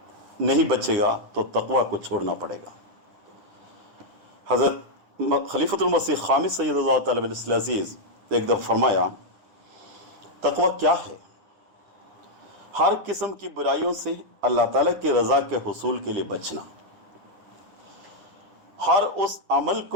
نہیں بچے گا تو تقوی کو چھوڑنا پڑے گا۔ حضرت خلیفۃ المسیح خامس سید اللہ تعالیٰ علیہ العزیز ایک دفعہ فرمایا، تقوی کیا ہے؟ ہر قسم کی برائیوں سے اللہ تعالیٰ کی رضا کے حصول کے لیے بچنا، ہر اس عمل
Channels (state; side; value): late; left; 10 ms